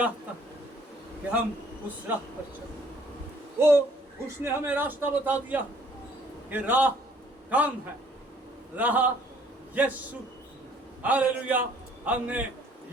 है कि हम उस राह पर चलें। उसने हमें रास्ता बता दिया कि राह कौन है? राह यीशु। हालेलुया। हमने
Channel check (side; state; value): both; normal; correlation 0.60